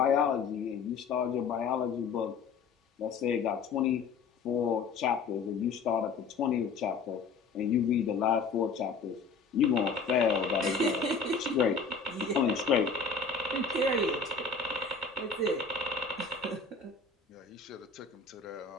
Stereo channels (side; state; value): right; quieter; 4.9 dB